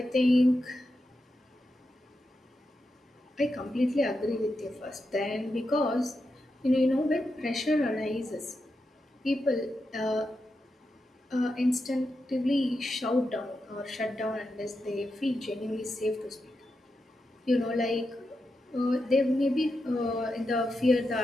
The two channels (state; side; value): normal; both; correlation 0.87